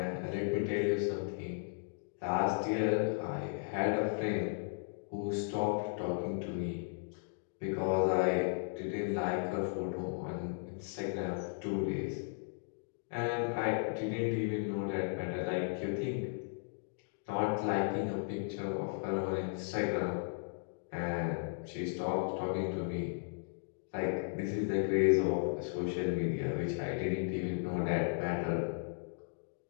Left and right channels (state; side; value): silent; right; digital silence